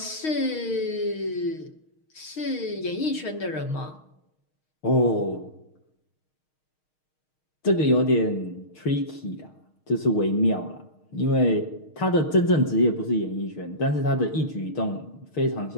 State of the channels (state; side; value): late; right; 6.4 ms